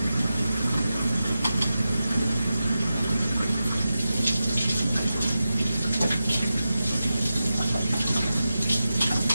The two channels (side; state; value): both; inverted; correlation -0.91